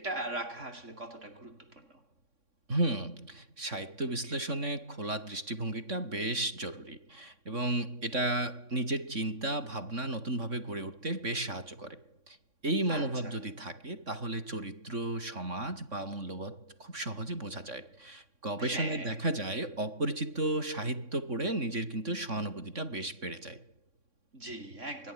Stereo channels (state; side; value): late; left; 3.6 ms